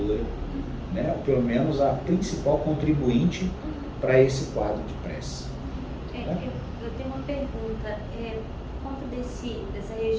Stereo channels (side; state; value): both; identical; correlation 1.00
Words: né? Ou pelo menos a principal contribuinte para esse quadro de pressa. Né? Eu tenho uma pergunta. Por conta dessa